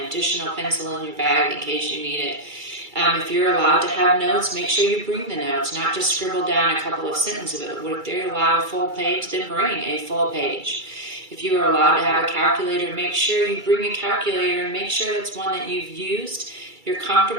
additional pencil in your bag in case you need it. If you're allowed to have notes, make sure you bring the notes, not just scribble down a couple of sentences of it. If they're allowed a full page, then bring a full page. If you are allowed to have a calculator, make sure you bring a calculator and make sure it's one that you've used, you're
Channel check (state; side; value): late; left; 2.3 ms